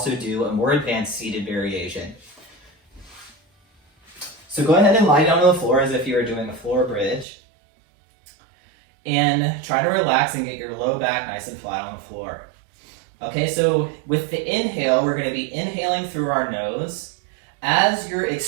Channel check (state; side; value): drops out; left; at 7.2 s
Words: do a more advanced seated variation. So go ahead and lie down on the floor as if you were doing a floor bridge. And try to relax and get your low back nice and flat on the floor. Okay, so with the inhale, we're going to be inhaling through our nose as you're